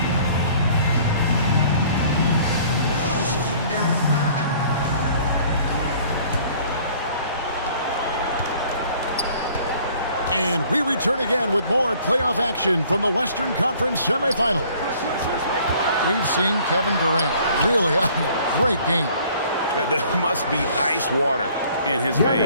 And we return again with more playoff action from the Western Conference semifinals. We've seen Kevin Durant really having a great game. There must be ice water in his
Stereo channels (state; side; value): inverted; both; correlation -0.55